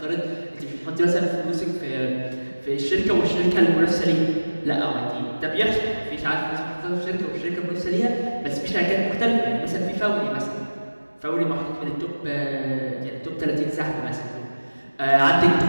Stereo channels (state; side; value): inverted; both; correlation -1.00